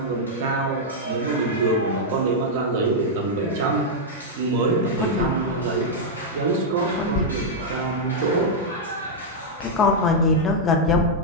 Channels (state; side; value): normal; both; correlation -0.04